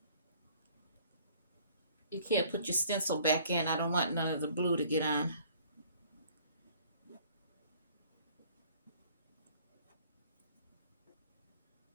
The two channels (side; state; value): both; inverted; correlation -0.56